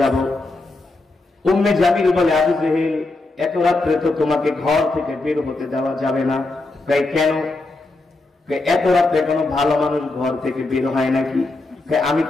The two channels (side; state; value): right; quieter; 3.1 dB